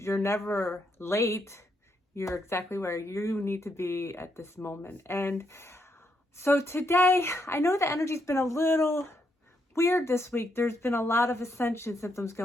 never late. You're exactly where you need to be at this moment. And so today, I know the energy's been a little weird this week. There's been a lot of ascension symptoms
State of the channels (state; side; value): normal; both; correlation 0.78